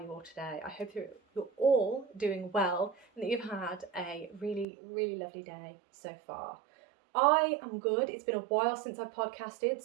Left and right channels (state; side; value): drops out; left; at 4.7 s